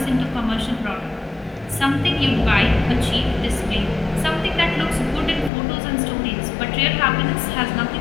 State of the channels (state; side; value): drops out; right; at 5.5 s